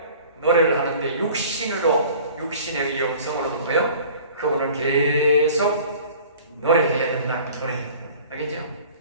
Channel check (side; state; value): both; inverted; correlation -0.46